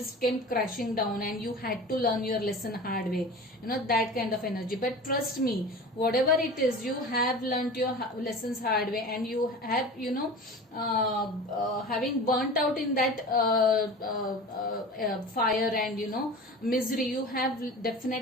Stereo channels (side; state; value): both; normal; correlation 0.35